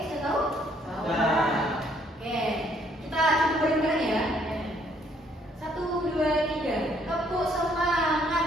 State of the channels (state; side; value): normal; both; correlation 0.66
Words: sudah tahu? Nah. Oke, kita coba bareng-bareng ya. 1, 2, 3. Tepuk